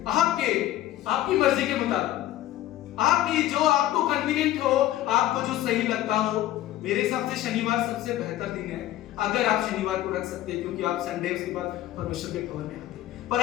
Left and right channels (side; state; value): right; quieter; 14.1 dB